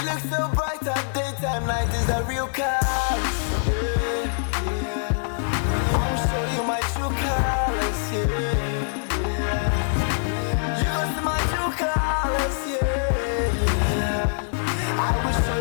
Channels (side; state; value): right; silent; digital silence